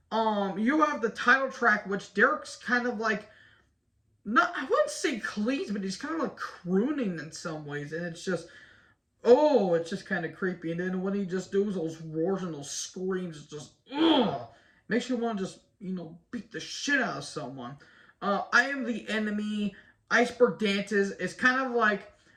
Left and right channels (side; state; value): both; identical; correlation 1.00